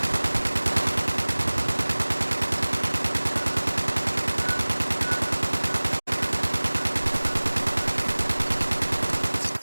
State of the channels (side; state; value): both; inverted; correlation -1.00